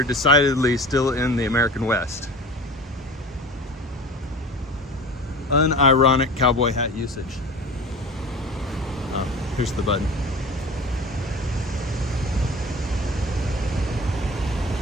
decidedly still in the American West. Unironic cowboy hat usage. Oh, here's the button.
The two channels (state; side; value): normal; both; correlation 0.37